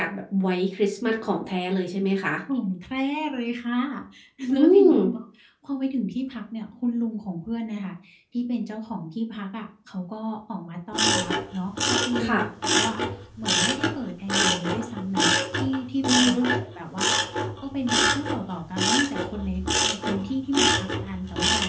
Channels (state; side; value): identical; both; correlation 1.00